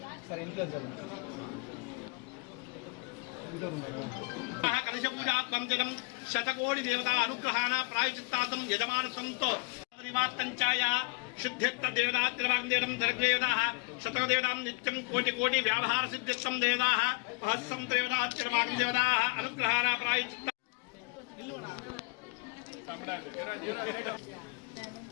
కలశపూజాత్మం జగం శతకోటి దేవతా అనుగ్రహాణ ప్రాయచిత్తాతం యజమానసంతో నివార్తంచాయ శుద్ధ్యత్త దేవతాత్రివాగ్దేవం జగదేవతాః శతదేవతాం నిత్యం కోటి కోటి వ్యావహార సిద్ధిత్తం దేవతాః మహస్సం దేవతాత్రివాగ్దేవతాః అనుగ్రహాణ ప్రాయచిత్త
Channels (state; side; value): quieter; right; 31.2 dB